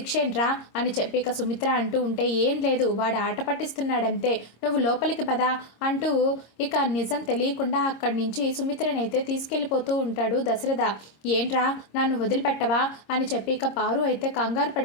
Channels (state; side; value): late; right; 26 ms